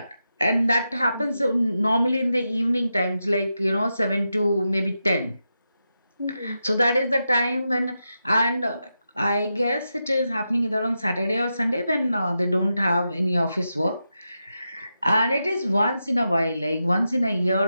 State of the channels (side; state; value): both; inverted; correlation -0.88